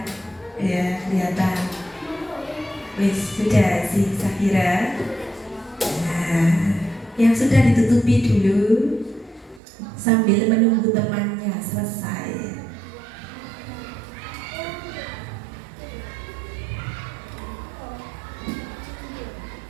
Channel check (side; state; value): left; drops out; at 9.6 s